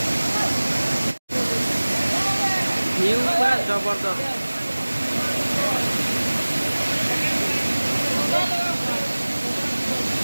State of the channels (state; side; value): inverted; both; correlation -1.00